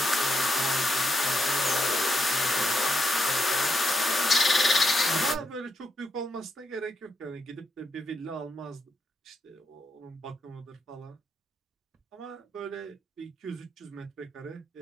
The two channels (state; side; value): normal; both; correlation 0.81